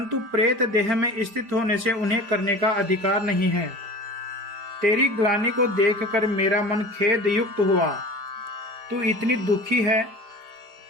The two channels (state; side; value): late; left; 4.9 ms